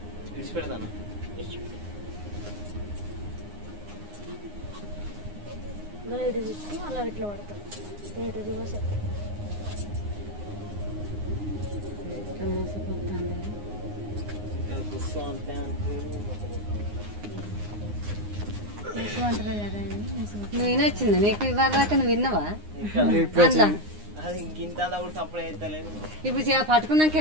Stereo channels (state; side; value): late; left; 9.7 ms